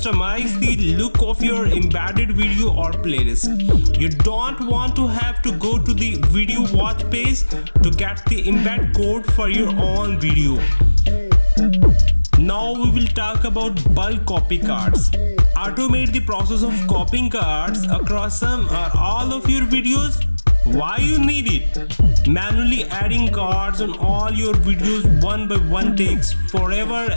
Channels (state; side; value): inverted; both; correlation -1.00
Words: the look of your embedded video or playlist. You don't want to have to go to the video watch page to get the embed code for your own video. Now we will talk about bulk copy cards. Automate the process of copying cards across some or all of your videos. Why you need it? Manually adding cards on all your videos one by one takes forever